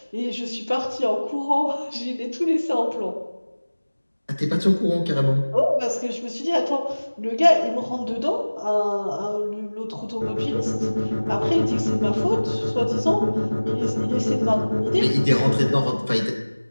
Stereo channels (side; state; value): both; inverted; correlation -1.00